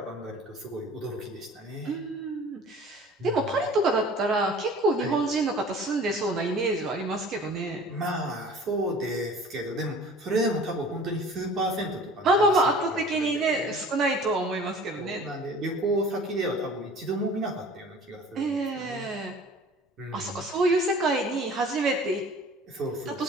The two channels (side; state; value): both; normal; correlation 0.46